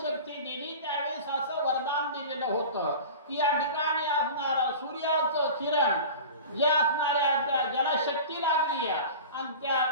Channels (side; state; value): both; inverted; correlation -0.35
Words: दिली त्यावेळेस असं वरदान दिलेलं होतं की या ठिकाणी असणारा सूर्याचं किरण जे असणाऱ्या त्या ज्याला शक्ती लागली आणि त्या